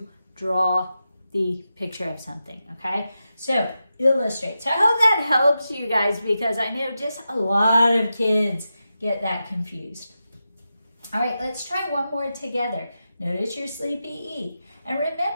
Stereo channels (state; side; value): inverted; both; correlation -0.90